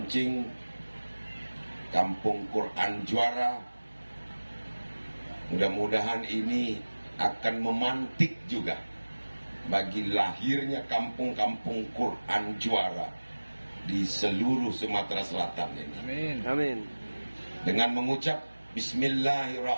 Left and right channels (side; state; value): both; inverted; correlation -1.00